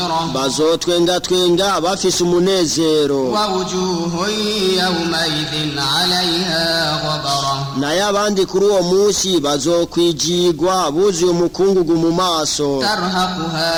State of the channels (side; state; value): both; identical; correlation 1.00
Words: bazotwengatwenga bafise umunezero, ووجوه يومئذ عليها غبرة naye abandi kuri uwo munsi bazokwijigwa buzuye umukungugu mu maso,